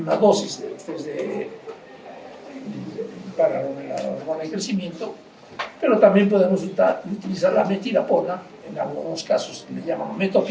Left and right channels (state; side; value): identical; both; correlation 1.00